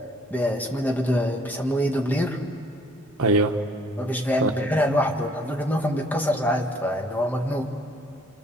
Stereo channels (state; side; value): normal; both; correlation 0.60